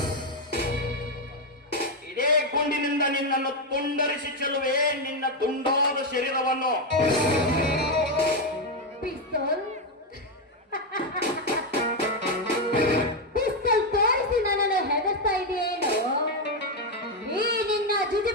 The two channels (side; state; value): both; normal; correlation 0.05